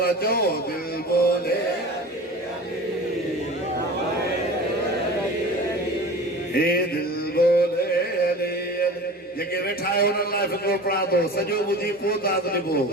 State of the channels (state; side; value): normal; both; correlation 0.37